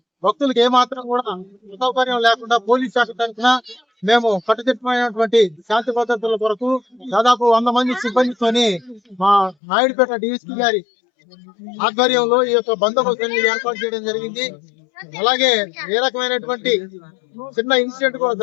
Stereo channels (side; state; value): right; drops out; at 9.6 s